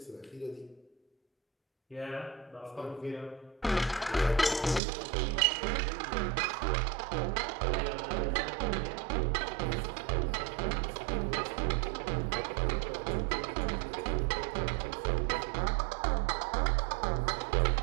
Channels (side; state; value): left; drops out; at 4.8 s